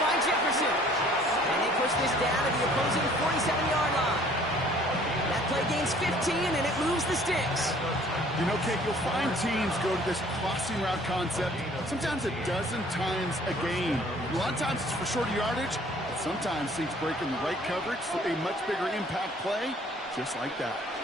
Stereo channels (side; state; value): both; normal; correlation 0.55